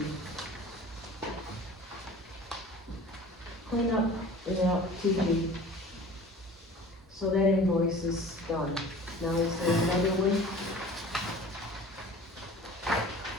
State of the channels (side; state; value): both; normal; correlation 0.43